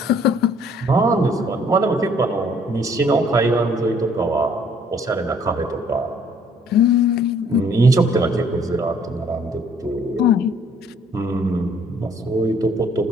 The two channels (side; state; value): both; normal; correlation 0.60